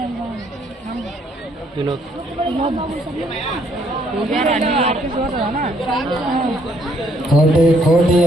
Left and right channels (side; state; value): both; normal; correlation 0.68